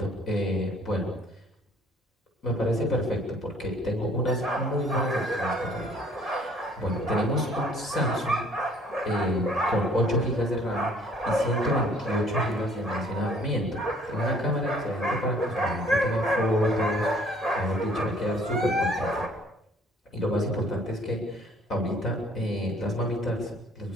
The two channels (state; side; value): normal; both; correlation 0.58